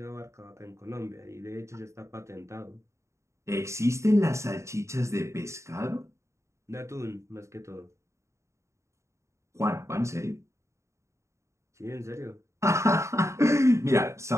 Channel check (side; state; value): left; late; 0.14 ms